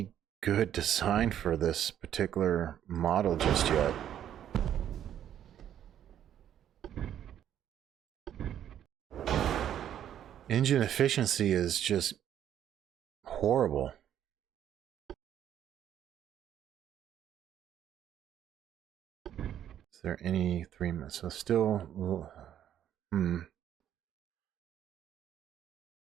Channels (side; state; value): left; quieter; 10.4 dB